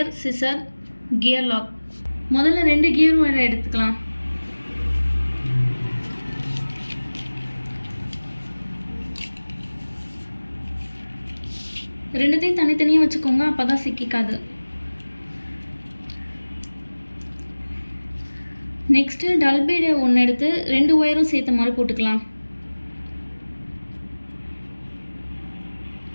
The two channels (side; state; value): both; inverted; correlation -1.00